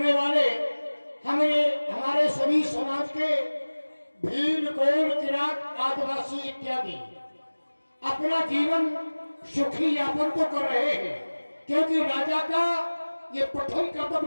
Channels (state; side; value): inverted; both; correlation -1.00